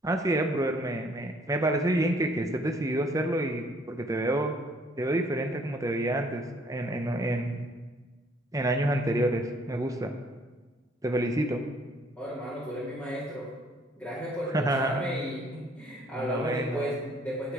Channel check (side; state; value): both; normal; correlation 0.62